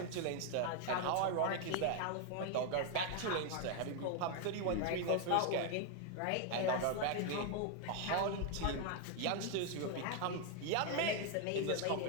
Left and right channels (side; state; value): both; different; correlation 0.01